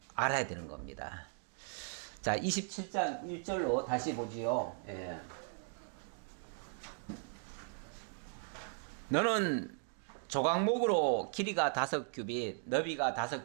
알아야 되는 겁니다. 자, 27장 1절로 다시 보지요. 예. 너는 조각목으로 길이가 5규빗, 너비가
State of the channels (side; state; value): left; silent; 53 dB below the other